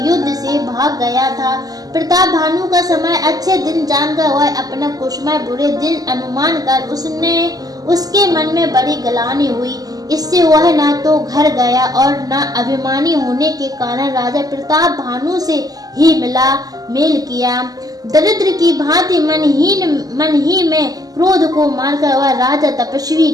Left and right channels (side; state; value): left; late; 0.18 ms